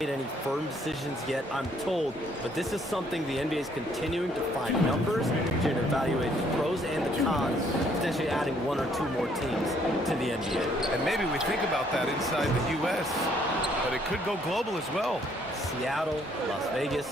any firm decisions yet, I'm told, but this is something the NBA is continuing to find numbers, to evaluate the pros and the cons, potentially adding 1 or 2 more teams to the NBA. And maybe we think about that inside the U.S., but it could go global as well. Seattle, Las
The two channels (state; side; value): normal; both; correlation 0.66